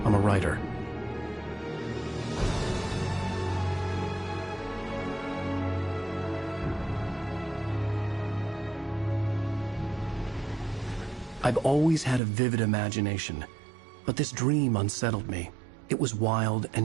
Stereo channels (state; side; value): drops out; left; at 12.2 s